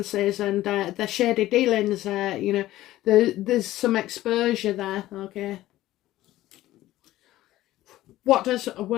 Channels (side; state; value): right; quieter; 15.4 dB